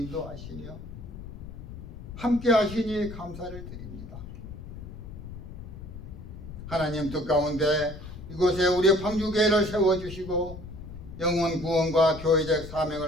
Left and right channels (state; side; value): noise; left; rumble, 12 dB below the sound